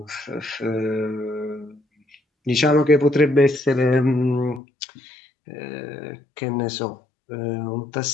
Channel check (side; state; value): right; drops out; at 4.6 s